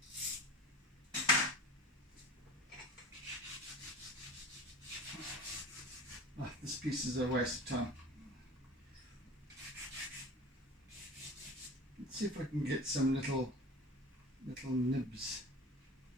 Oh, this piece is a waste of time. Let's see if I can get some little nibs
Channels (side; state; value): both; normal; correlation 0.36